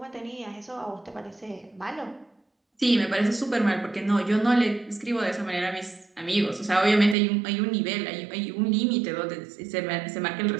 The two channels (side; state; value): left; drops out; at 7.2 s